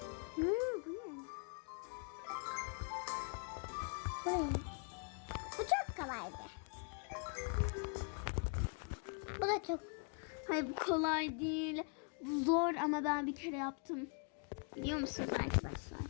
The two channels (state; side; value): quieter; right; 39.3 dB